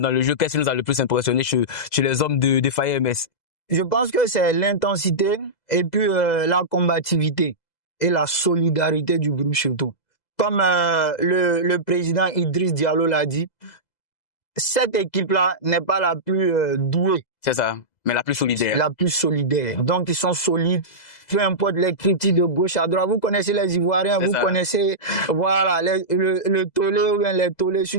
le jeu, qu'est-ce qui nous a le plus impressionné chez les hommes de Fire MS? Je pense que c'est l'intensité et puis la combativité et la solidarité du groupe surtout. Comme le président Idriss Diallo l'a dit, cette équipe-là n'est pas la plus douée. C'est ça, mais la plus solidaire. La plus solidaire. Donc, ils sont solides. Peu importe les critiques de gauche à droite. Vous connaissez les Ivoiriens, vous connaissez, voilà, le tollé ou bien les tollés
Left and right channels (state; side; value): late; right; 2.0 ms